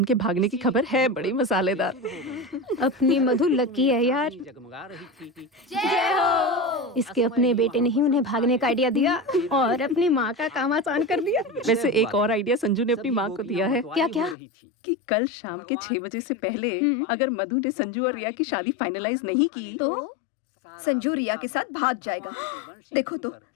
के भागने की खबर है बड़ी मसालेदार। अपनी मधु लकी है यार। जय हो। इसके अपने बेटे ने ही उन्हें भागने का आइडिया दिया और अपनी माँ का काम आसान कर दिया। वैसे एक और आइडिया संजू ने अपनी माँ को दिया है। क्या क्या? कि कल शाम के 6 बजे से पहले अगर मधु ने संजू और रिया की शादी फाइनलाइज नहीं की तो संजू रिया के साथ भाग जाएगा। देखो तो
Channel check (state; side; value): drops out; right; at 14.4 s